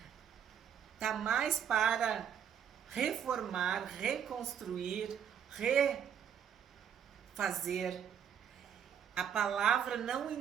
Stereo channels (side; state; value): left; quieter; 8.4 dB